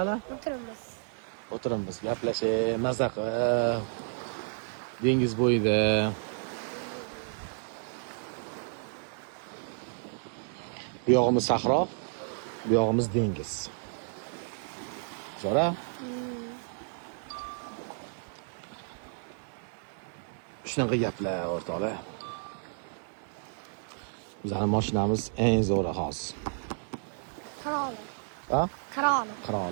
o'tiramiz, gaplashib, mazza qilib, dengiz bo'yida. Bu yog'imiz sahro, bu yog'imiz dengiz. Zo'ra? Shunaqa gaplar o'rtoqlar. Bizning mashinamiz eng zo'ri hozir. Qiroli. Ha? Qiroli.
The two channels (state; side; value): silent; left; digital silence